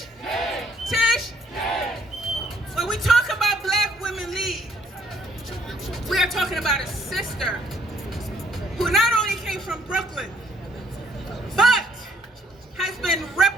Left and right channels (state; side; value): normal; both; correlation 0.65